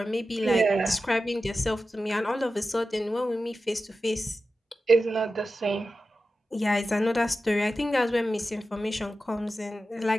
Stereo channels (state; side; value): normal; both; correlation 0.93